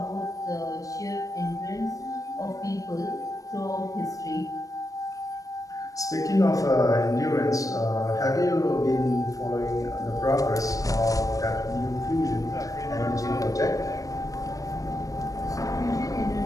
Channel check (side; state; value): right; late; 0.16 ms